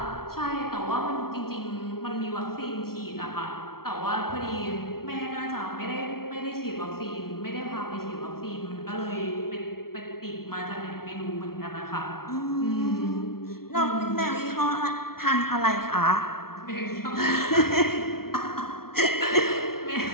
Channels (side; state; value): right; late; 0.94 ms